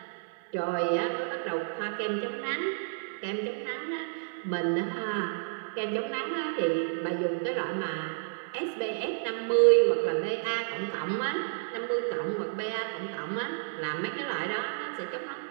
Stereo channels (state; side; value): silent; left; digital silence